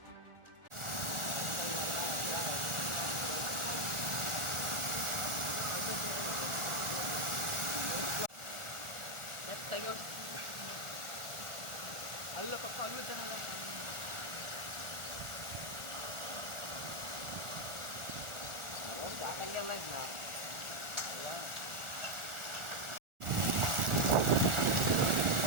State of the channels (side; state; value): left; late; 1.4 ms